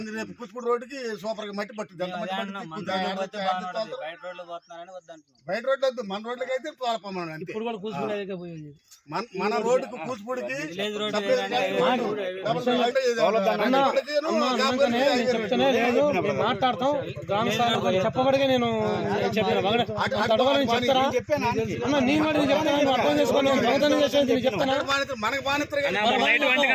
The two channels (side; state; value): both; identical; correlation 1.00